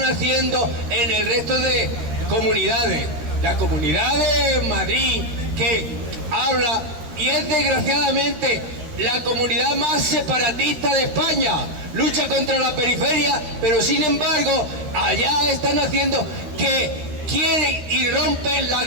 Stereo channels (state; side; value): late; left; 13 ms